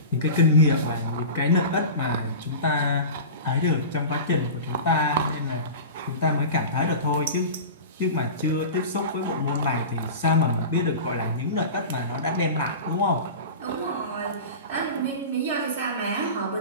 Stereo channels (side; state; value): both; inverted; correlation -0.31